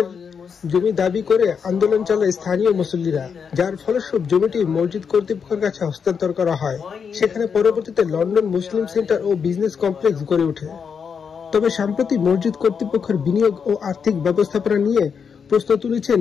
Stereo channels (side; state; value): right; quieter; 6.5 dB